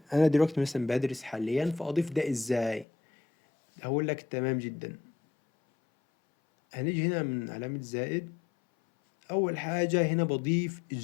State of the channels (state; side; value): drops out; right; at 2.9 s